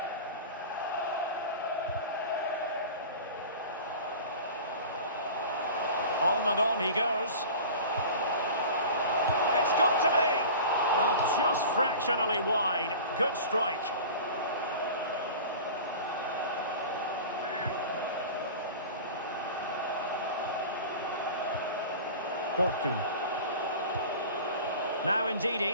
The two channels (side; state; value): both; inverted; correlation -0.37